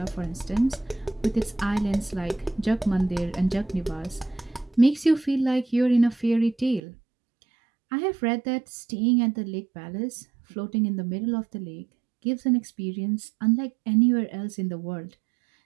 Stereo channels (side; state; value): left; drops out; at 6.8 s